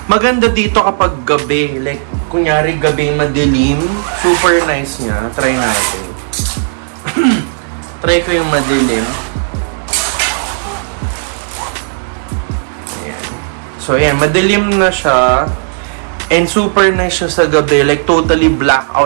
Maganda dito kapag gabi. Like, kunyari gabi madilim. Super nice niya. Try natin. Try ko yung madilim. Ayan. So, ayan. Madilim na siya. And super nice siya sa gabi. Like, totally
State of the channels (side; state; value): left; silent; digital silence